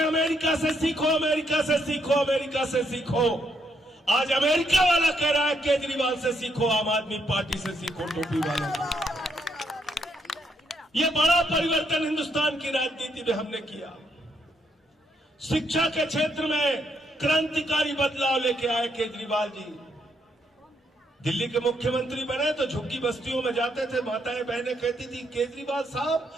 अमेरिका से सीखो, अमेरिका से सीखो, अमेरिका से सीखो। आज अमेरिका वाला कह रहा है केजरीवाल से सीखो, आम आदमी पार्टी से सीखो, टोपी वालों। ये बड़ा परिवर्तन हिंदुस्तान की राजनीति में हमने किया। शिक्षा के क्षेत्र में क्रांतिकारी बदलाव लेके आए केजरीवाल जी। दिल्ली के मुख्यमंत्री बने तो झुग्गी बस्तियों में जाते थे, माताएं बहनें कहती थी केजरीवाल साहब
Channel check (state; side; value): normal; both; correlation 0.75